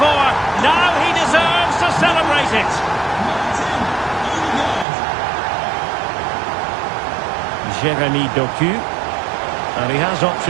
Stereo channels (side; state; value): left; drops out; at 4.9 s